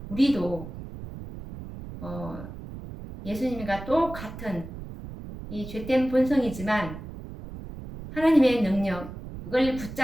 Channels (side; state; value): right; noise; rumble, 11 dB below the sound